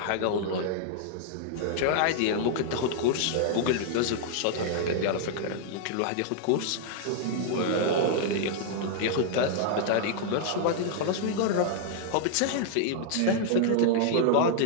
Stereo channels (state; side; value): different; both; correlation -0.01